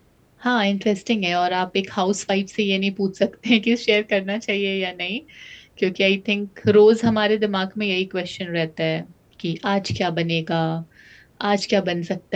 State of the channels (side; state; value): both; identical; correlation 1.00